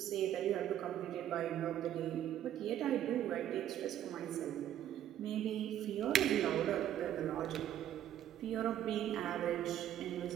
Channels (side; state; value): left; quieter; 11.2 dB